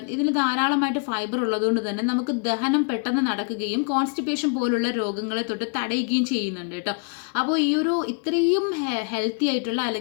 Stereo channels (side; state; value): right; quieter; 39.1 dB